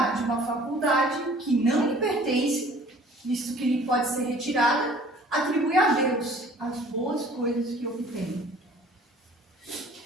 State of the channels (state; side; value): normal; both; correlation 0.51